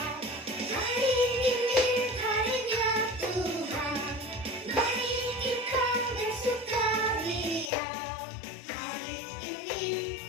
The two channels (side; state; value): right; drops out; at 7.7 s